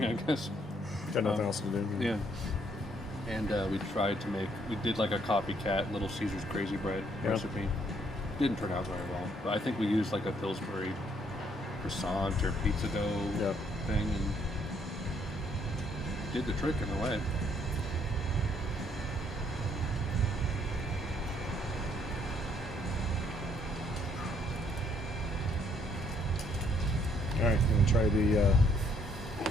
I guess. Got nothing else to do. Yeah. And we tried to we did, like, a copycat Little Caesars Crazy Bread recipe. Didn't turn out very well. But I think we used, like, a Pillsbury croissant or pizza dough thing, and did the trick in a way. All right, I'm gonna try the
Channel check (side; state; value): both; normal; correlation 0.68